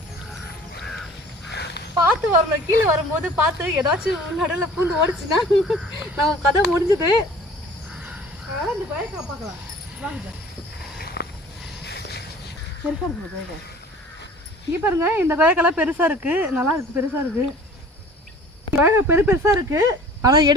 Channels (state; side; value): normal; both; correlation 0.48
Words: பார்த்து வரணும், கீழே வரும்போது பார்த்து ஏதாச்சும் நடுவில் பூந்து ஓடிச்சுன்னா நம்ம கதை முடிஞ்சுது. அதனால் இந்த கொயக்கா பார்க்கலாம் வாங்க. பெருசாக இருக்கு கொயக்கா. இங்கே பாருங்க, இந்த கொயக்காலாம் பெருசாக இருக்குது, நல்லா இருக்குது, பெருசாக இருக்குது. கொயக்கா பெருசாக இருக்குது. ஆனால்